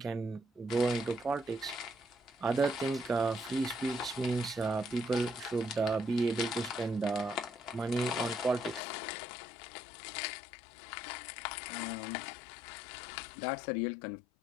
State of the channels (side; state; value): right; drops out; at 8.8 s